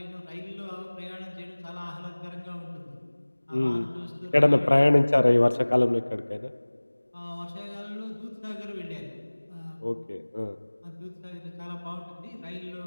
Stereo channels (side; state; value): both; inverted; correlation -1.00